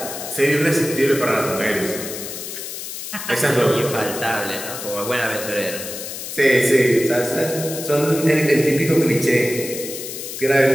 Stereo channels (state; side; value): noise; left; hiss, 8 dB below the sound